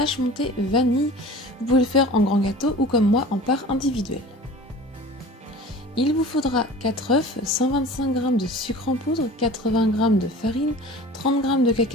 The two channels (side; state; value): both; normal; correlation 0.41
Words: montée vanille. Vous pouvez le faire en grand gâteau ou comme moi en part individuelle. Il vous faudra 4 œufs, 125 g de sucre en poudre, 80 g de farine, 30 g de